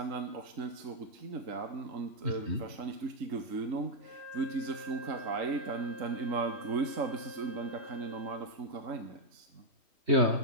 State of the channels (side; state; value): left; late; 3.7 ms